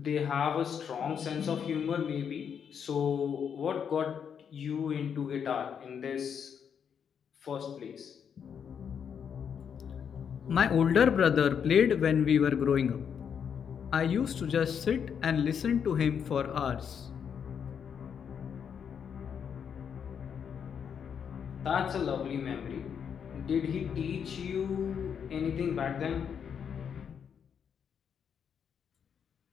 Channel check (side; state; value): right; quieter; 7.5 dB